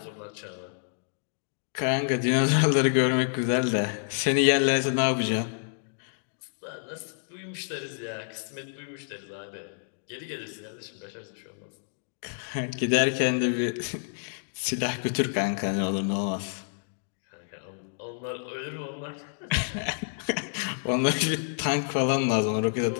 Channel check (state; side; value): silent; right; digital silence